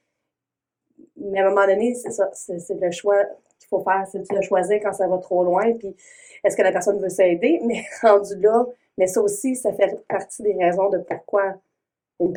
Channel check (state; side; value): identical; both; correlation 1.00